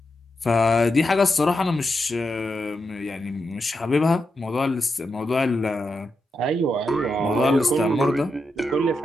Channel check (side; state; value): both; normal; correlation 0.86